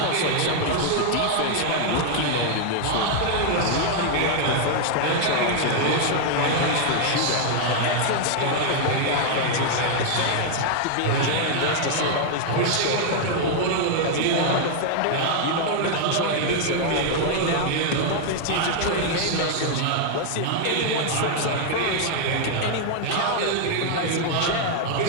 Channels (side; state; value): both; different; correlation 0.00